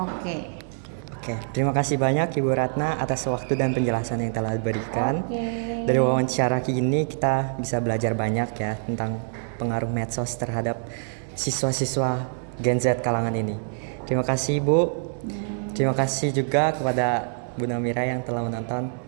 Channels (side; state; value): left; silent; 60 dB below the other